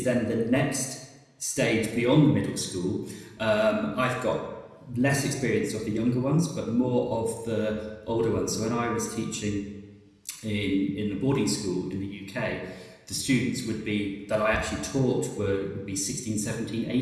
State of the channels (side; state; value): both; identical; correlation 1.00